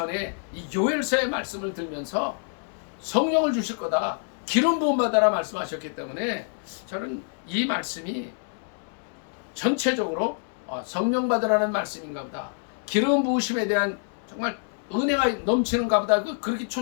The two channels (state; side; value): silent; right; 57 dB below the other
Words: 이 요엘서의 말씀을 들면서 성령을 주실 거다, 기름 부음 받아라 말씀하셨기 때문에 저는 이 말씀이 전체적으로 성령 받으라는 말씀인가 보다, 기름 부으심에 대한 정말 은혜가 넘치는가 보다, 그렇게